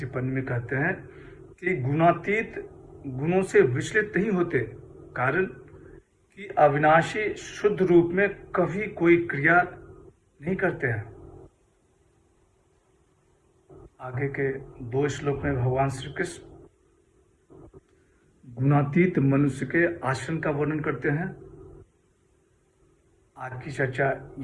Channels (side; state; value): both; identical; correlation 1.00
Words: में कहते हैं कि गुणातीत गुणों से विचलित नहीं होते, कारण कि अविनाशी शुद्ध रूप में कभी कोई क्रिया नहीं करते हैं। आगे के 2 श्लोक में भगवान श्री कृष्ण गुणातीत मनुष्य के आचरण का वर्णन करते हैं। आज की चर्चा